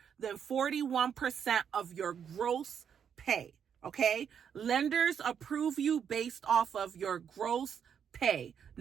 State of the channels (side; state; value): left; quieter; 7.8 dB